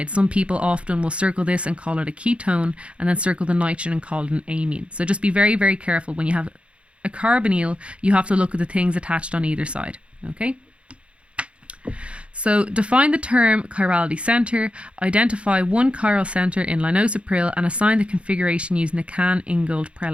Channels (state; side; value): late; left; 0.060 ms